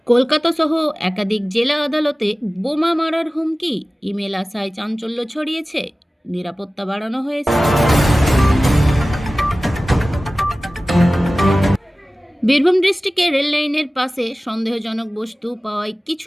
কলকাতা সহ একাধিক জেলা আদালতে বোমা মারার হুমকি, ইমেল আসায় চাঞ্চল্য ছড়িয়েছে, নিরাপত্তা বাড়ানো হয়েছে। বীরভূম ডিস্ট্রিক্টে রেল লাইনের পাশে সন্দেহজনক বস্তু পাওয়ায়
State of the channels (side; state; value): both; normal; correlation 0.97